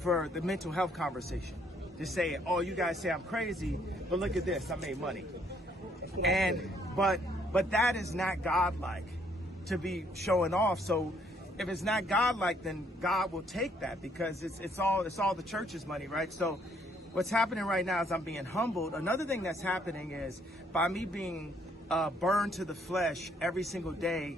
the mental health conversation. To say, oh, you guys say I'm crazy, but look at this, I made money. But that is not godlike to be showing off. So if it's not godlike, then God will take that, because it's all the church's money, right? So what's happening right now is I'm being humbled. Another thing that's happening is by me being burned to the flesh every single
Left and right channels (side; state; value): both; normal; correlation 0.67